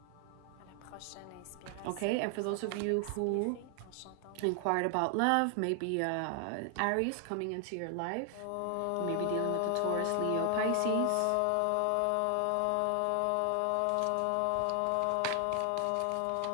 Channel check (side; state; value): both; different; correlation 0.00